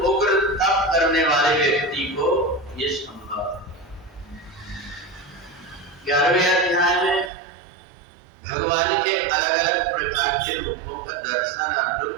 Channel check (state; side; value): drops out; left; at 7.3 s